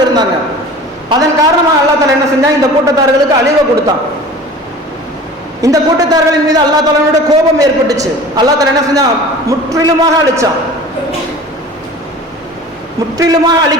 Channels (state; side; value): normal; both; correlation 0.41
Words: இருந்தாங்க. அதன் காரணமாக அல்லாஹ் தஆலா என்ன செஞ்சான், இந்த கூட்டத்தார்களுக்கு அழிவை கொடுத்தான். இந்த கூட்டத்தார்களின் மீது அல்லாஹ் தஆலாவுடைய கோபம் ஏற்பட்டுச்சு. அல்லாஹ் தஆலா என்ன செஞ்சான், முற்றிலுமாக அழிச்சான், முற்றிலுமாக